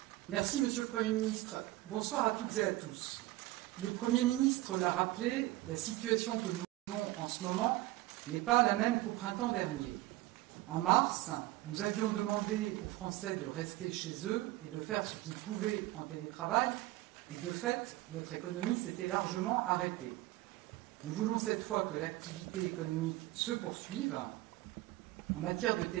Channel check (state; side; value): quieter; left; 17.8 dB